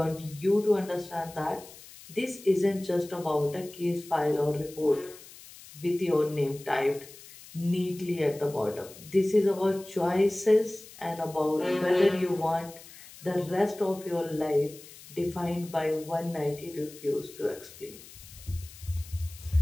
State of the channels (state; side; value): noise; left; hiss, 19 dB below the sound